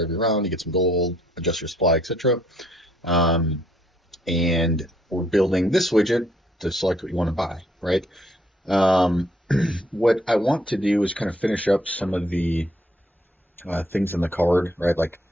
every round. You get some gold, adjust your supply, etc. And we're building this widget to select what you want to buy, right? Um, what I want to do is kind of finish up some of the things in the card, right? Like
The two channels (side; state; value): both; normal; correlation 0.67